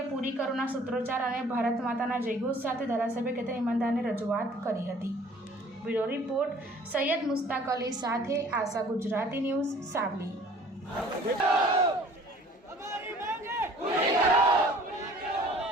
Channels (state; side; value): normal; both; correlation 0.52